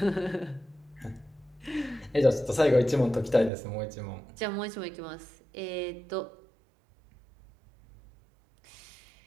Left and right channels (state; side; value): drops out; left; at 3.5 s